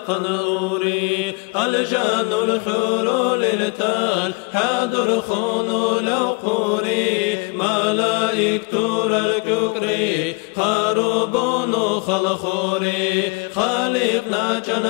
أوري الجان الخرول التال حاضر خونو لو قوري ملائكة الككري خربون خلخوري خالقنا جن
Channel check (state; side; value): quieter; right; 29.5 dB